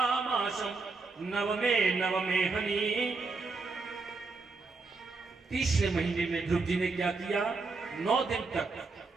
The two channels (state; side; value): quieter; left; 3.9 dB